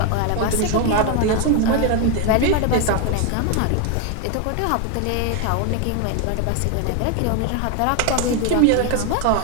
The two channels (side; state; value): both; different; correlation 0.01